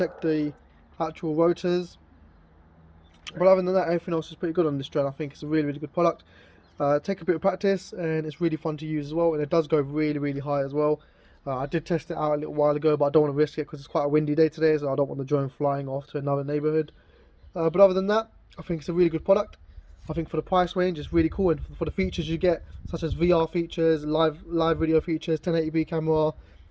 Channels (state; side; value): identical; both; correlation 1.00